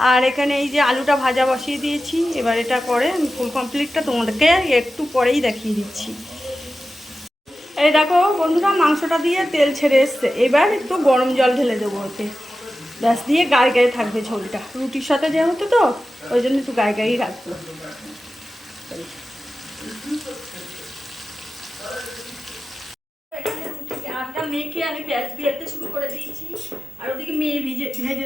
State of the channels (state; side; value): normal; both; correlation 0.93